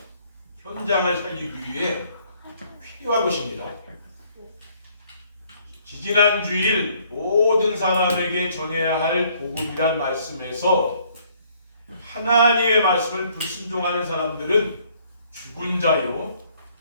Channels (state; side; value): inverted; both; correlation -0.63